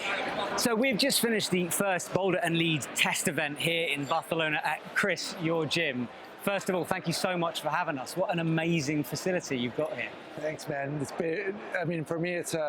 So we've just finished the first boulder and lead test event here in Barcelona at Chris, your gym. First of all, thank you so much for having us. What an amazing facility you've got here. Thanks, man. It's been, I mean, for me, it's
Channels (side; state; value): both; identical; correlation 1.00